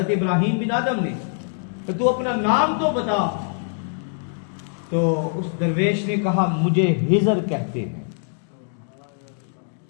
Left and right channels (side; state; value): right; silent; 63 dB below the other